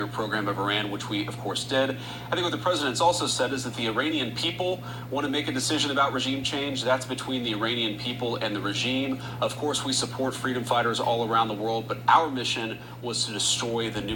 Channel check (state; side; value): identical; both; correlation 1.00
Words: program of Iran, which we, of course, did. I think what the president's also said is that the Iranian people want to make a decision about regime change. That's between the Iranian people and the regime. Of course, we support freedom fighters all around the world, but our mission was to destroy the